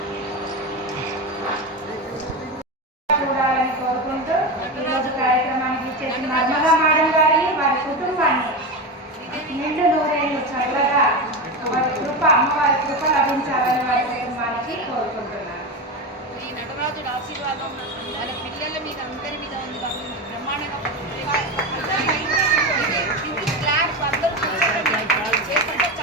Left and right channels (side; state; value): both; normal; correlation 0.19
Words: చూడాలని కోరుకుంటూ ఈరోజు కార్యక్రమానికి ఇచ్చేసిన నర్మదా మేడం గారిని వారి కుటుంబాన్ని నిండు నూరేళ్ళు చల్లగా వారి కృప అమ్మవారి కృప లభించాలని వారి కుటుంబానికి కోరుకుంటున్నాను. ఈ నటరాజుడు ఆశీర్వాదం మన పిల్లల మీద అందరి మీద ఉంది కాబట్టి బ్రహ్మాండంగా